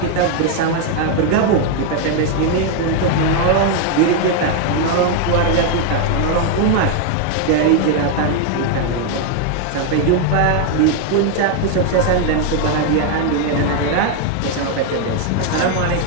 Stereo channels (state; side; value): different; both; correlation 0.01